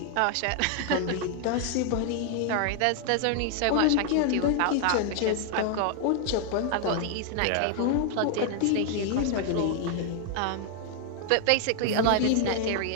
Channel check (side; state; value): both; different; correlation 0.00